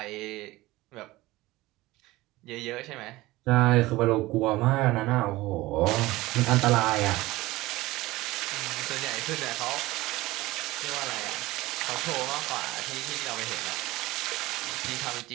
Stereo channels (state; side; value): quieter; left; 19.0 dB